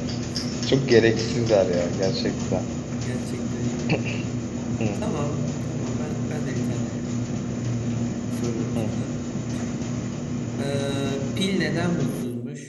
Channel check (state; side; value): identical; both; correlation 1.00